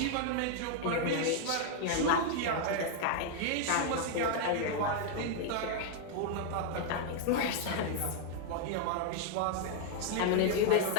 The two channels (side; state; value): both; different; correlation 0.00